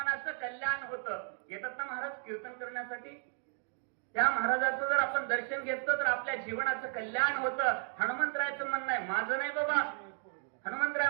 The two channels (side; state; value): left; silent; 55 dB below the other